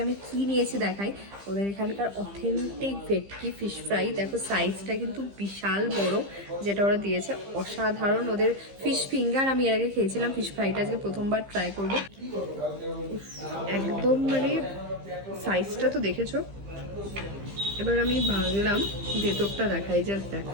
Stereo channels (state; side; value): late; left; 15 ms